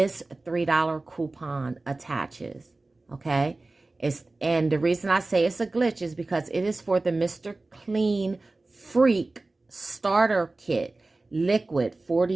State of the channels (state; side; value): quieter; left; 3.2 dB